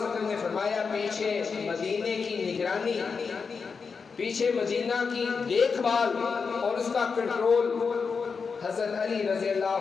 نے فرمایا پیچھے مدینے کی نگرانی، پیچھے مدینہ کی دیکھ بھال اور اس کا کنٹرول حضرت علی رضی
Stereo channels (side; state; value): right; quieter; 5.3 dB